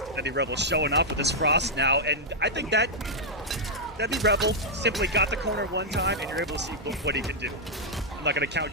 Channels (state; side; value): normal; both; correlation -0.05